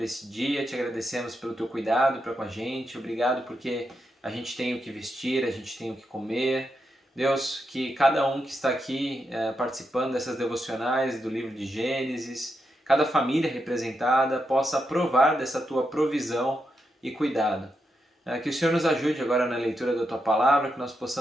esse dia, te agradecemos pelo teu cuidado para com a gente. Obrigado porque a gente tem o que vestir, a gente tem o que comer. Deus, que cada um que está aqui participando dessas devocionais do livro de Gênesis, cada família representada possa provar dessa tua provisão e cuidado. Que o Senhor nos ajude agora na leitura da tua palavra, que nós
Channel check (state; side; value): normal; both; correlation 0.84